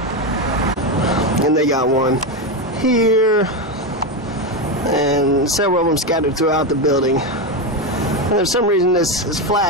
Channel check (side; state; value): both; normal; correlation 0.12